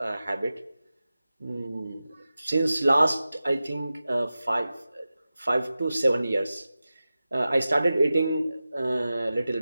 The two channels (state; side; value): inverted; both; correlation -0.94